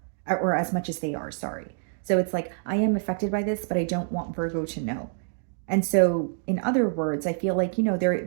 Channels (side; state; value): left; silent; digital silence